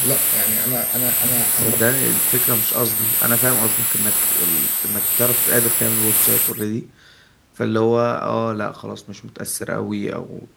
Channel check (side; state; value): both; identical; correlation 1.00